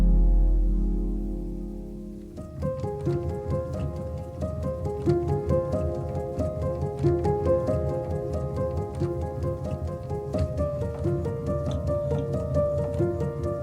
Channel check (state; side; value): identical; both; correlation 1.00